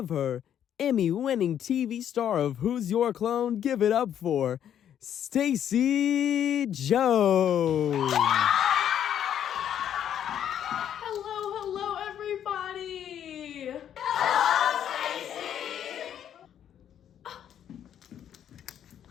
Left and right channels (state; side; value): quieter; right; 9.8 dB